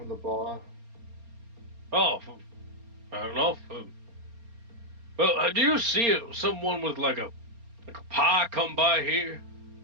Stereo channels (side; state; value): left; late; 4.3 ms